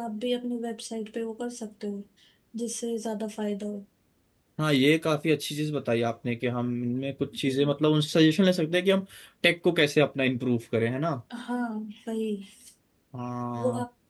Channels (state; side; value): identical; both; correlation 1.00